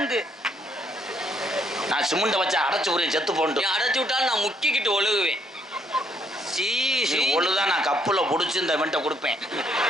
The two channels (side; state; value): both; normal; correlation 0.70